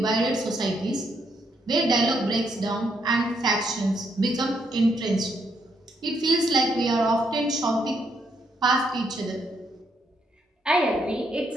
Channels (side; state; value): both; normal; correlation 0.75